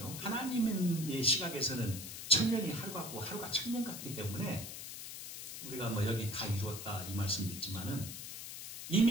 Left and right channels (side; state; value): left; noise; hiss, 9 dB below the sound